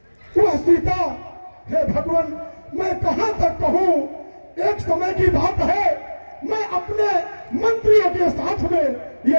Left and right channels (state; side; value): inverted; both; correlation -1.00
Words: वह सीता। हे भगवान, मैं कहां तक कहूं। एक समय की बात है, मैं अपने मंत्रियों के साथ में